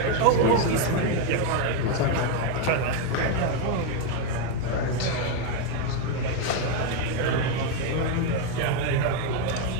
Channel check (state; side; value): different; both; correlation 0.02